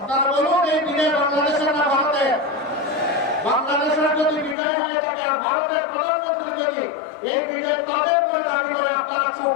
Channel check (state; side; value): drops out; right; at 4.5 s